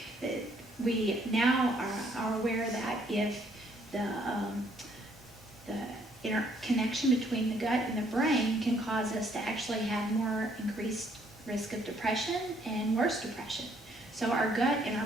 We now are aware that if the interconnection between the gut and the brain can cause us to actually have more increased risk of depression and worse depression. So our gut and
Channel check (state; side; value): normal; both; correlation 0.66